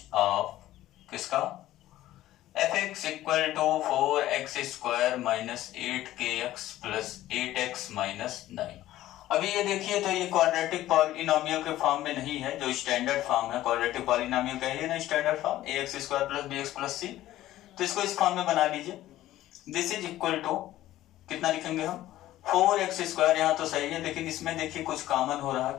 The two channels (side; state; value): right; quieter; 14.6 dB